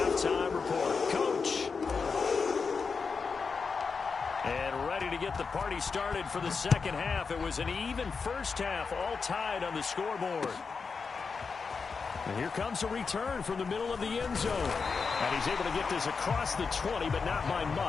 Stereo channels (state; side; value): quieter; right; 5.1 dB